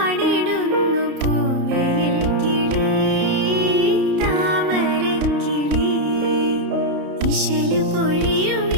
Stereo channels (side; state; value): left; late; 30 ms